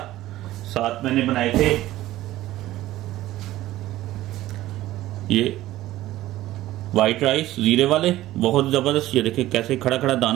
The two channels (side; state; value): left; quieter; 15.4 dB